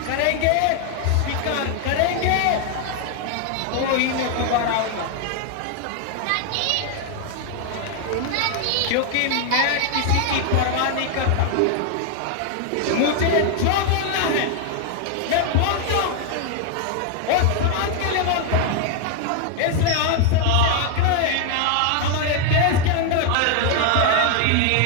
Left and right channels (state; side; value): different; both; correlation 0.00